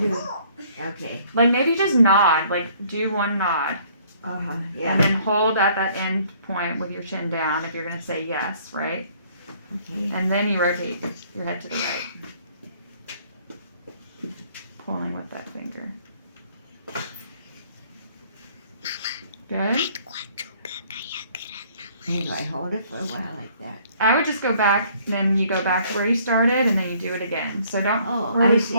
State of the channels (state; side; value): inverted; both; correlation -0.60